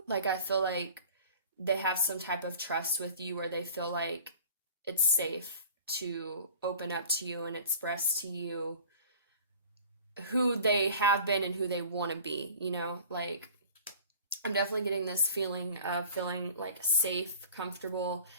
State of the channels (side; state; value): both; inverted; correlation -0.44